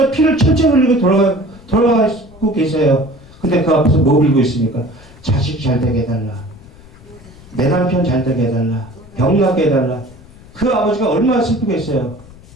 피를 철철 흘리고 돌아가고 계세요. 근데 그 앞에서 뭐 빌고 있습니까? 자식 잘 되게 해달라. 내 남편 잘 되게 해달라. 병 나게 해달라. 그 아버지가 얼마나 슬프겠어요.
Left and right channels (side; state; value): left; noise; rumble, 22 dB below the sound